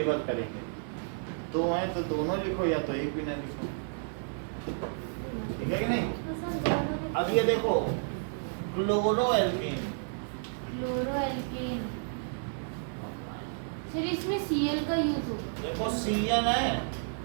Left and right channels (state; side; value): silent; left; 57 dB below the other